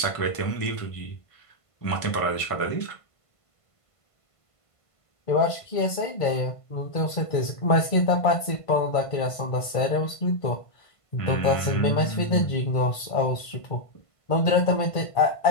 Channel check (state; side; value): late; right; 1.5 ms